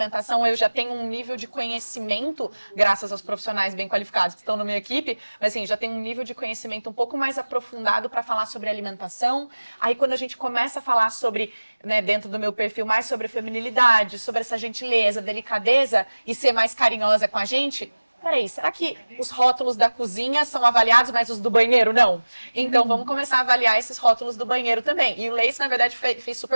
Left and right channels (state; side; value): inverted; both; correlation -1.00